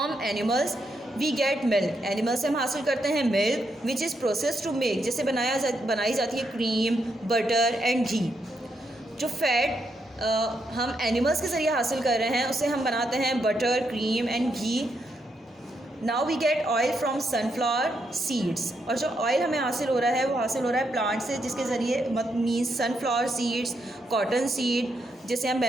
animals we get milk. Animal से हम हासिल करते हैं milk which is process to make, जिससे बनाई जाती है क्रीम, बटर एंड घी. जो फैट हम एनिमल्स के ज़रिए हासिल कर रहे हैं उससे हम बनाते हैं butter, cream and ghee. Now we get oil from sunflower seeds. और जो ऑयल हमें हासिल हो रहा है वो हासिल हो रहा है प्लांट से, जिसके ज़रिए means sunflower seeds, cotton seed जिसे हम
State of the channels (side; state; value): both; normal; correlation 0.80